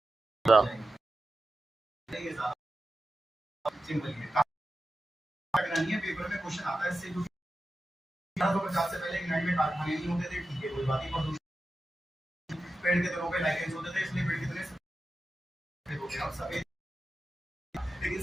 सिंपल है। करानी है, पेपर में क्वेश्चन आता है इससे। जो 1850 से पहले इंग्लैंड में कारखाने नहीं होते थे, ठीक है, कोई बात नहीं। प्रदूषण पेड़ के तनों पे लाइकेंस होते थे, इसलिए पेड़ कितने सफेद हो गए। अब सफेद,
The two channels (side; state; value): both; normal; correlation 0.92